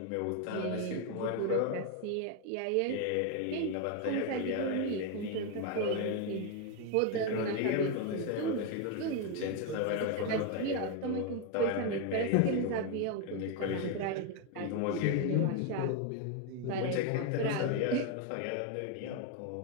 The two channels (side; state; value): both; different; correlation 0.01